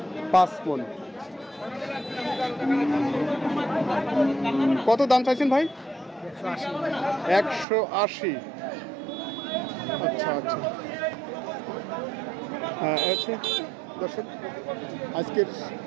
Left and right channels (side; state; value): left; drops out; at 7.7 s